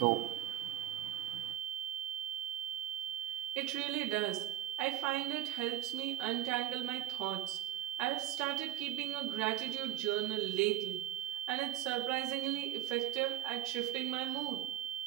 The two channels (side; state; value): left; quieter; 13.4 dB